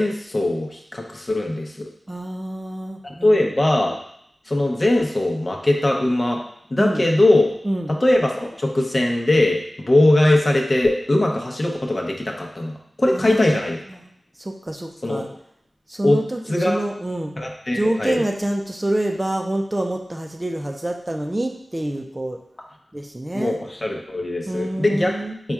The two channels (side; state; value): both; normal; correlation 0.97